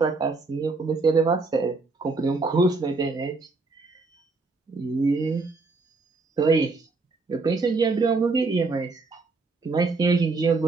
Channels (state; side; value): quieter; left; 3.8 dB